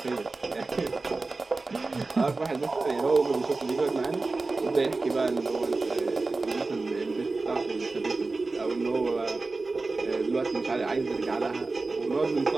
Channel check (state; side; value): quieter; left; 3.6 dB